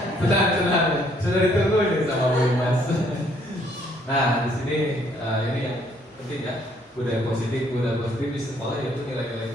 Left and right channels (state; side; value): normal; both; correlation 0.66